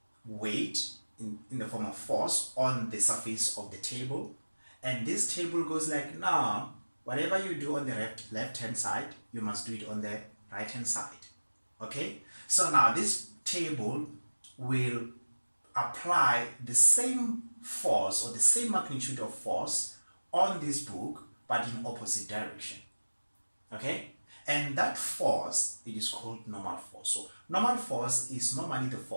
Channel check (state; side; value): inverted; both; correlation -1.00